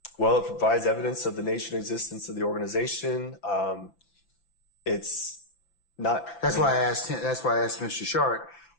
Well, it provides evidence of the nature and existence of the organization. It's not. That's why I asked him. That's why I asked Mr. Sharp.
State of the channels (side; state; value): right; late; 5.9 ms